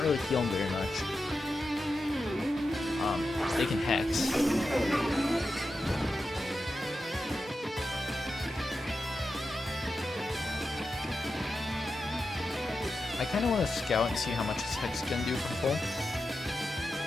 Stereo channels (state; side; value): normal; both; correlation 0.90